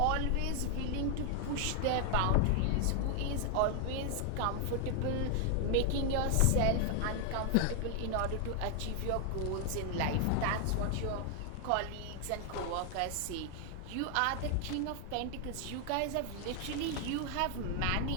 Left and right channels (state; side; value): different; both; correlation 0.00